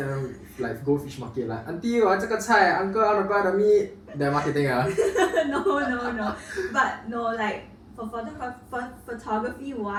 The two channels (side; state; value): both; identical; correlation 1.00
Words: like go fish market like auntie 我要这个菜 uncle I want to buy the meat that marketing No. But no, like for photography